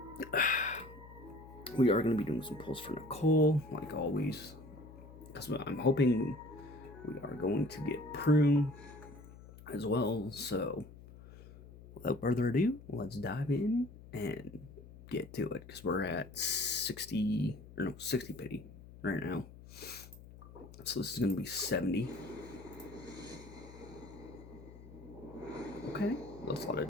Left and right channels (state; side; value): noise; left; hum, 18 dB below the sound